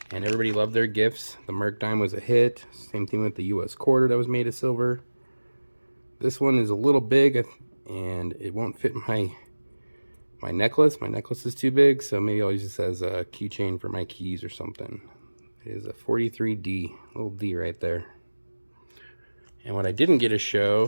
And everybody loved their gifts. The Merc dime was a hit. Same thing with the US quarter that was made of silver. This one is a little big and it won't fit my necklace. My necklace is too big, so maybe I'll use this as a keychain for my keys or something. It is a 43D, little D right there. And what I didn't get to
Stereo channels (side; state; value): both; inverted; correlation -1.00